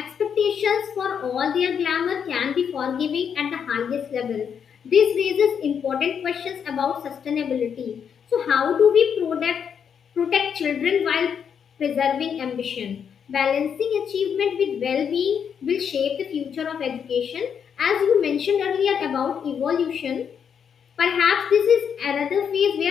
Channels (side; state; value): right; quieter; 7.5 dB